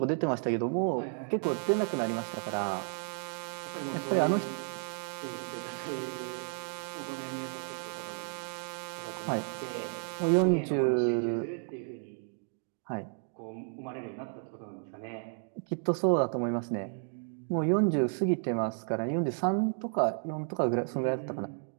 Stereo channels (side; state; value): left; silent; 56 dB below the other